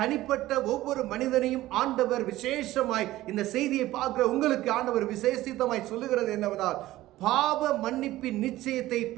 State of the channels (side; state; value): left; quieter; 16.1 dB